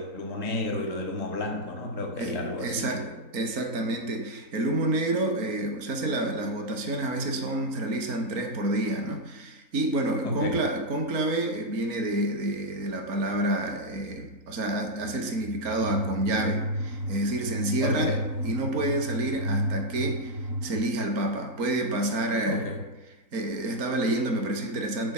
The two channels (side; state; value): left; late; 3.8 ms